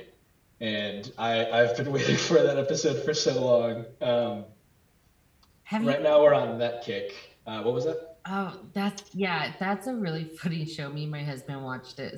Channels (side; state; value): both; identical; correlation 1.00